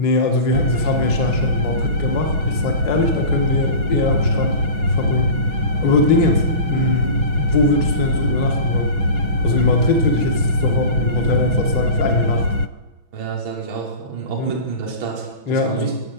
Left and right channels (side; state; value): left; late; 6.1 ms